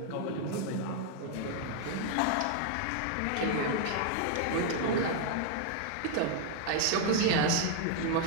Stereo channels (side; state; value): both; different; correlation 0.00